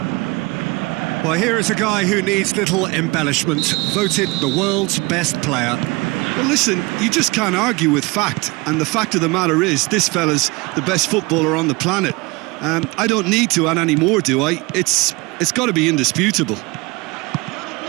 Well, here is a guy who needs little embellishment, voted the world's best player. Well, listen, you just can't argue with fact, and the fact of the matter is this fella's the best footballer on the planet. I don't need to add any more, do I? It's got to be indisputable.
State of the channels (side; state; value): left; quieter; 25.0 dB